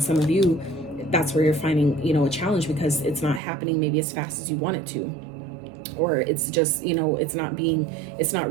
some of you, that's where you're finding, you know, a challenge because it's not happening maybe as fast as you want it to, or it's just, you know, it's not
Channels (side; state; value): left; drops out; at 3.4 s